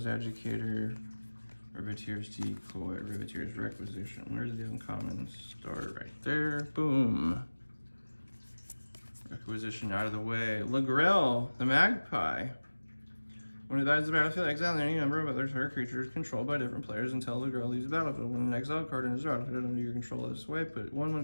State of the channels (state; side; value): inverted; both; correlation -1.00